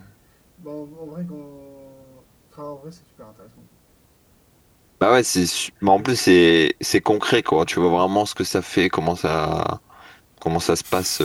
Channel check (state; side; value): identical; both; correlation 1.00